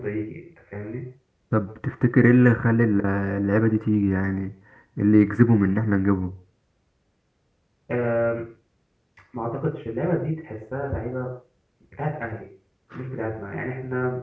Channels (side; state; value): both; identical; correlation 1.00